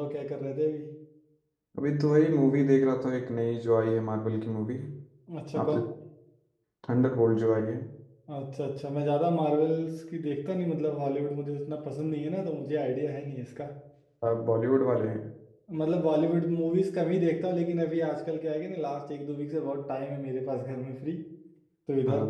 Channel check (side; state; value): both; identical; correlation 1.00